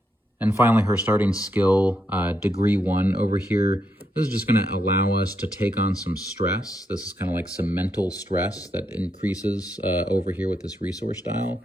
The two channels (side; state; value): both; normal; correlation 0.80